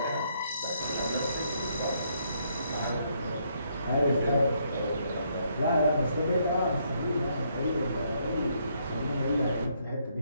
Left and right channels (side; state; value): both; inverted; correlation -0.73